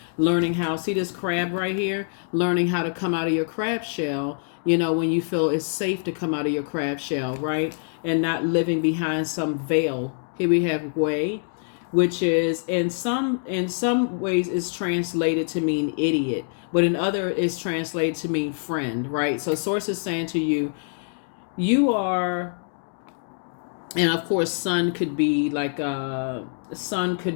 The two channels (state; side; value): silent; right; digital silence